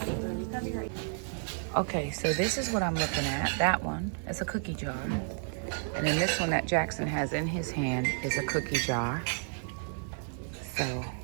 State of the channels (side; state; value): left; silent; 57 dB below the other